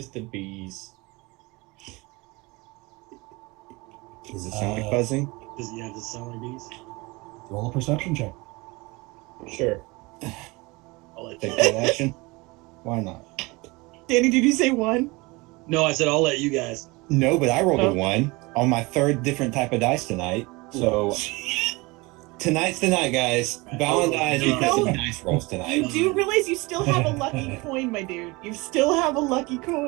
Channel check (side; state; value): left; quieter; 24.4 dB